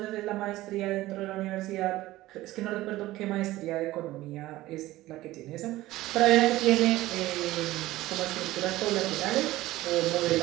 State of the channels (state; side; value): quieter; left; 16.9 dB